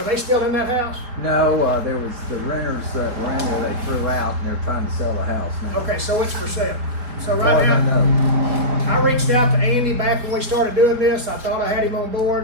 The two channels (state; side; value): late; left; 4.3 ms